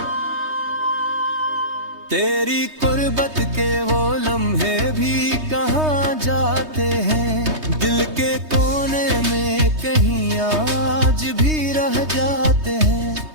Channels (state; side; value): late; left; 3.2 ms